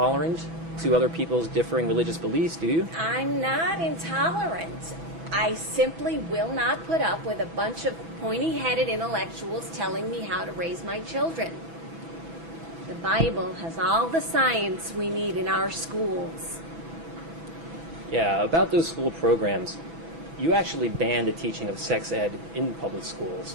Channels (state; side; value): late; left; 6.1 ms